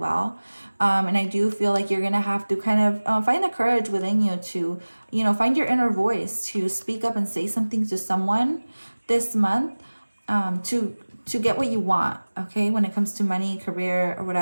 And I do feel like you're going to have to kind of find the courage within you to, you know, find your inner voice to speak up and say something to someone this month, to get what you want, okay? When it comes to money, career, or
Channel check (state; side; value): inverted; both; correlation -1.00